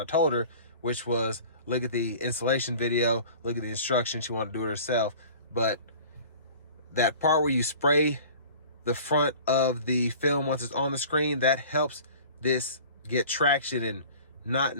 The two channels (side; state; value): both; inverted; correlation -0.44